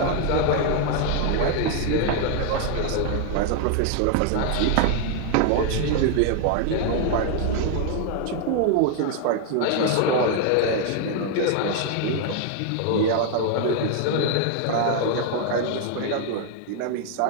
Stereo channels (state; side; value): different; both; correlation 0.00